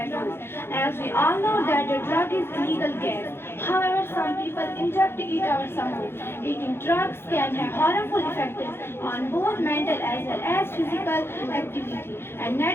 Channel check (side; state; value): right; late; 0.11 ms